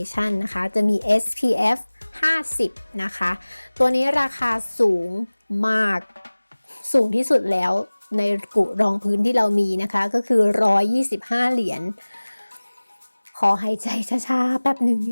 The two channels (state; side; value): inverted; both; correlation -1.00